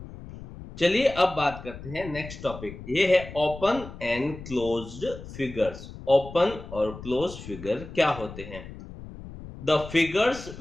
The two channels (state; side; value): noise; left; rumble, 13 dB below the sound